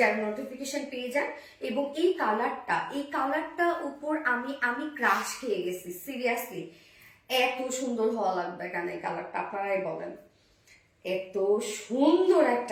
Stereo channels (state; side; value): identical; both; correlation 1.00